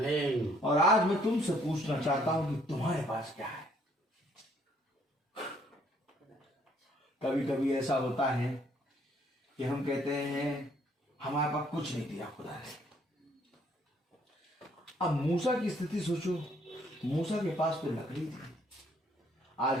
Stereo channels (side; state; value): both; normal; correlation 0.65